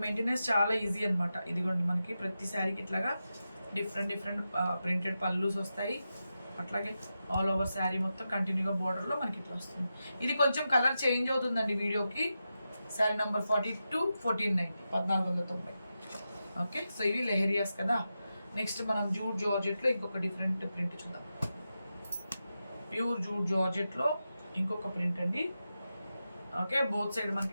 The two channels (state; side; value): inverted; both; correlation -0.90